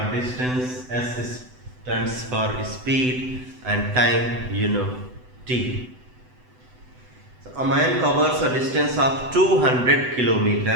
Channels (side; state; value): left; late; 7.9 ms